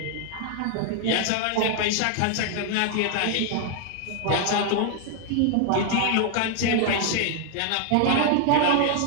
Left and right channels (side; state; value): both; different; correlation 0.00